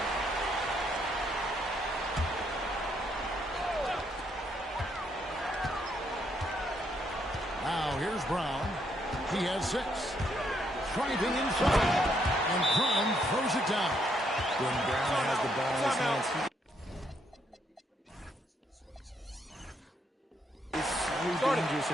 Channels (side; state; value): both; normal; correlation 0.74